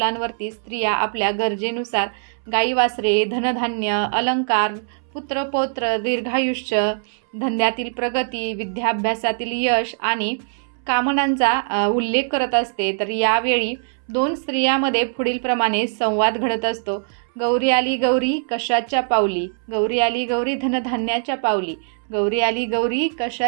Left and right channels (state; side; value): silent; left; 64 dB below the other